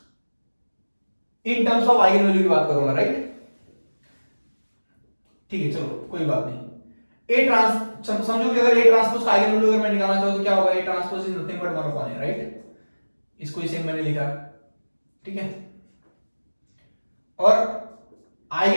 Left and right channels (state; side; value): inverted; both; correlation -1.00